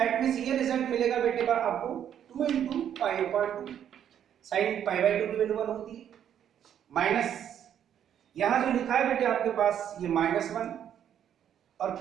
means ये रिजल्ट मिलेगा बेटे पर आपको 2 into pi upon 2, sine pi by 2 की वैल्यू 1 होती है, माइनस यहां जो लिखा है बेटे आपके पास ये -1 और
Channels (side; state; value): left; quieter; 9.6 dB